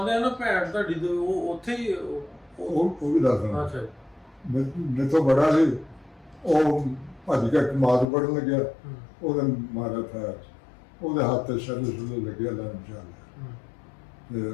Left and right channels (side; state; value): right; drops out; at 8.1 s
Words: ਆ ਨਾ ਭੈਣ ਤੁਹਾਡੀ ਤੇ ਉਹ ਉੱਥੇ ਹੀ ਉਹ ਵੀ ਦੱਸਦਾ। ਅੱਛਾ ਜੀ। ਮੇਰੇ ਤੋਂ ਬੜਾ ਸੀ। ਉਹ ਭੱਜ ਕੇ ਮਾਰ ਪੜਨ ਲੱਗਿਆ। ਹੂੰ। ਉਹਦੇ ਮਾਰਿਆ ਫੈਰ ਉਹਦੇ ਹੱਥ ਤੇ ਛੱਲੇ ਲੱਗਿਆ ਲਾਂ ਚਾਲ। ਹੂੰ। ਤੇ